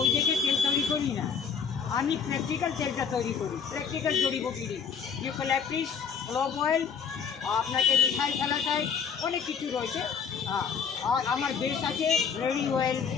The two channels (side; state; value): right; quieter; 6.6 dB